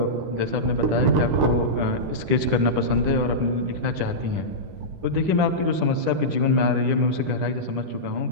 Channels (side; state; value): left; late; 10 ms